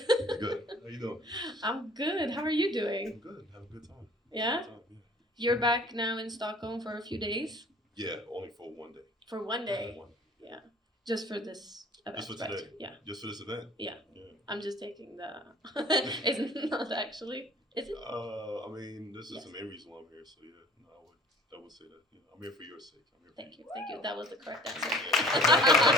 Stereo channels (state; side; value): normal; both; correlation 0.51